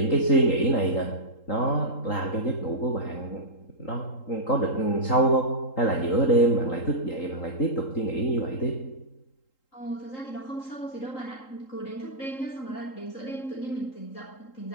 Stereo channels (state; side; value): late; right; 3.8 ms